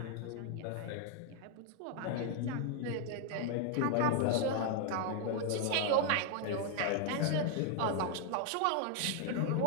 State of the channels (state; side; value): different; both; correlation 0.00